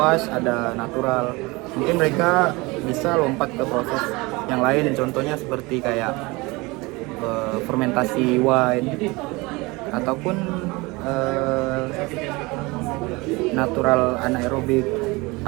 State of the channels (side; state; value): left; quieter; 24.0 dB